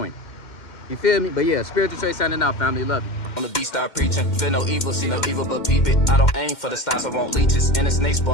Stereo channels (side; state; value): right; late; 2.1 ms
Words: You feel me? But yeah, Spiritual Trey signing out, family. Love you. On the beat, start preaching. Feel no evil, see no evil, but peep it. I don't aim for the stars, I want leeches. And a snake